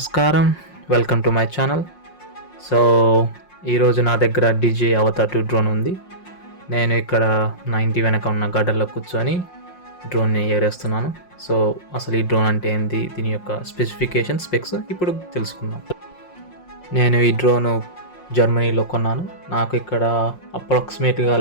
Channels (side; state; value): right; late; 5.6 ms